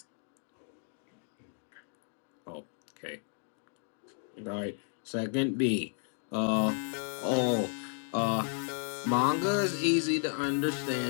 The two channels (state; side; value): silent; right; 56 dB below the other